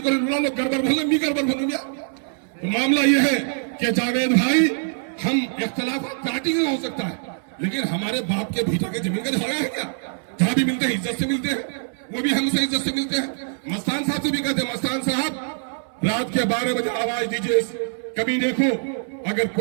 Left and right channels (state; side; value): silent; left; 63 dB below the other